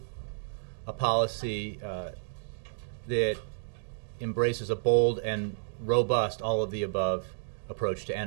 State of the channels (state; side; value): silent; left; digital silence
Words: a policy that embraces a bold and robust all-of-the-above approach to